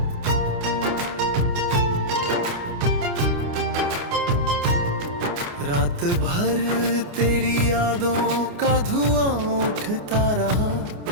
रात भर तेरी यादों का धुआं उठता रहा,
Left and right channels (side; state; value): left; late; 29 ms